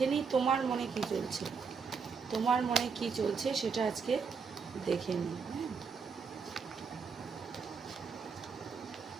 নিই তোমার মনে কি চলছে, তোমার মনে কি চলছে সেটা আজকে দেখে নিই।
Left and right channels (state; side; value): quieter; left; 5.7 dB